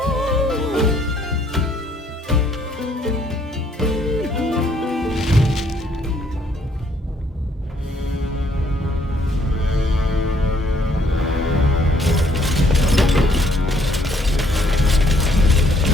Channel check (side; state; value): both; normal; correlation 0.66